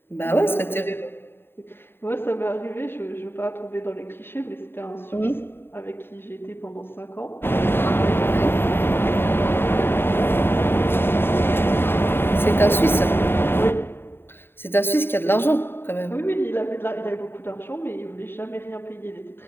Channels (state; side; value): late; right; 0.11 ms